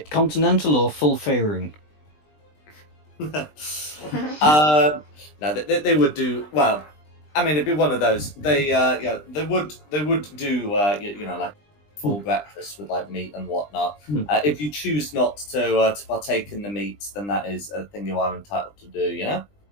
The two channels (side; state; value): right; late; 20 ms